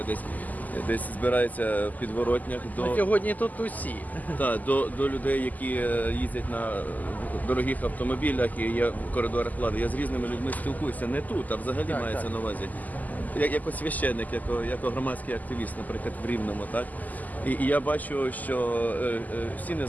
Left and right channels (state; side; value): late; right; 0.081 ms